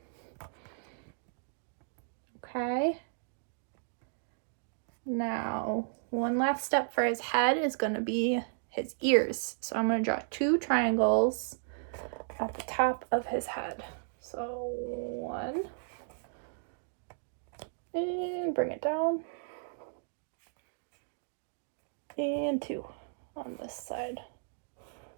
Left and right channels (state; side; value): silent; left; digital silence